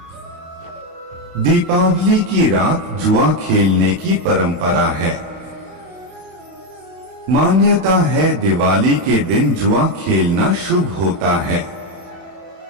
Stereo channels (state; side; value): late; left; 31 ms